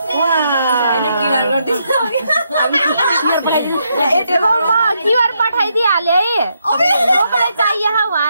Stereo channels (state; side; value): inverted; both; correlation -0.79